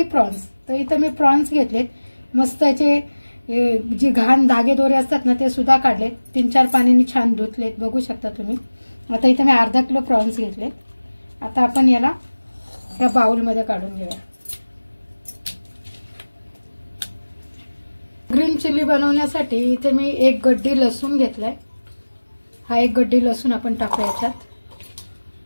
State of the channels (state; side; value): inverted; both; correlation -1.00